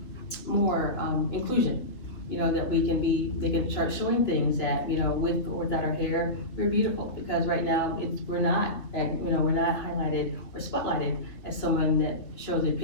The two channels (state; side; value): late; right; 3.2 ms